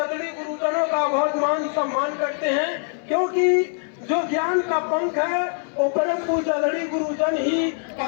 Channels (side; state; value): right; silent; 56 dB below the other